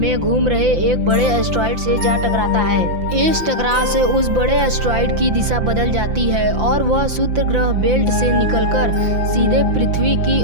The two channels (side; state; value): left; late; 5.8 ms